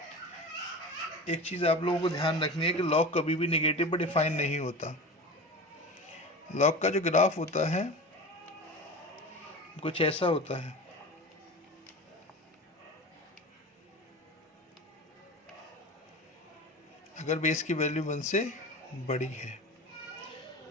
एक चीज़ आप लोगों को ध्यान रखनी है कि लॉग कभी भी नेगेटिव पर डिफाइन नहीं होता। लॉग का जो ग्राफ होता है कुछ ऐसा होता है। अगर बेस की वैल्यू 1 से बड़ी है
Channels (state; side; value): normal; both; correlation 0.31